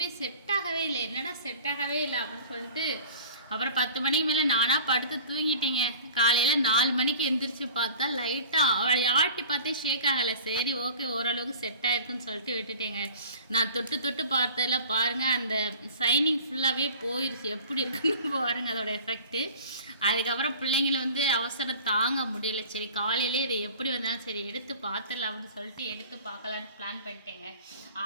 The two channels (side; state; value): both; inverted; correlation -0.42